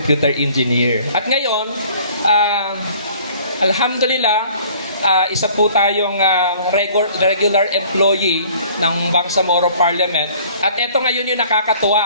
engineer. At ngayon, alhamdulillah, isa po tayong regular employee ng Bangsamoro Parliament. At ito ngayon yung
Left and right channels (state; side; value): inverted; both; correlation -0.53